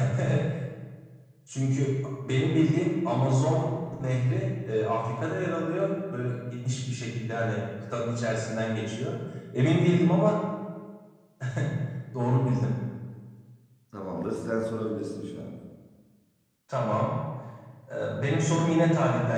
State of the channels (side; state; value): both; identical; correlation 1.00